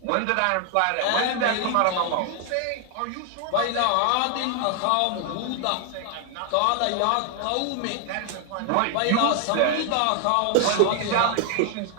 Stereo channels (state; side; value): different; both; correlation 0.00